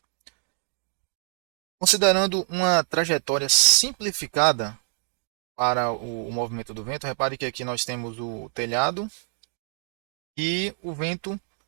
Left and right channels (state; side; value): silent; left; 61 dB below the other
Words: Considerando uma trajetória simplificada para o movimento do vento, repare que aqui nós temos o telhado e o vento